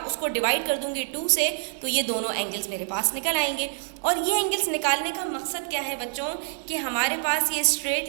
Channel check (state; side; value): silent; left; 61 dB below the other